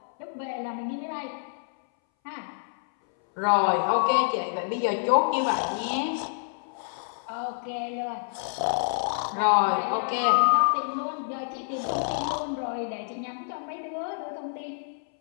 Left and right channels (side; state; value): right; silent; 60 dB below the other